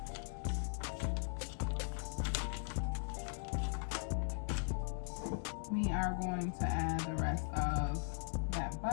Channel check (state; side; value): silent; right; digital silence